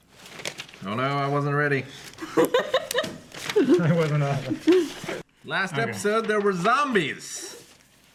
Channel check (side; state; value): both; identical; correlation 1.00